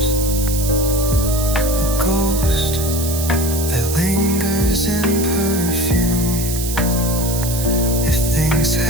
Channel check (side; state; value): right; noise; hiss, 6 dB below the sound